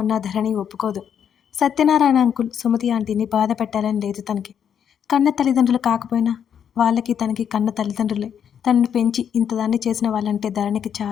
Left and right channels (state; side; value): quieter; right; 8.4 dB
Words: అన్న ధరణి ఒప్పుకోదు. సత్యనారాయణ అంకుల్ సుమతి ఆంటీని బాధ పెట్టాలని లేదు తనకి. కన్న తల్లిదండ్రులు కాకపోయినా వాళ్ళకి తనకి కన్న తల్లిదండ్రులే. తనని పెంచి ఇంతదాన్ని చేసిన వాళ్ళంటే ధరణికి